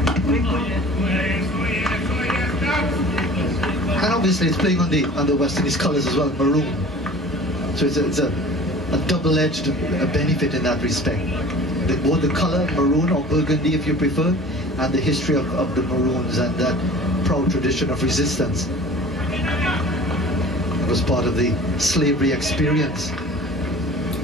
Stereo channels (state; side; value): normal; both; correlation 0.43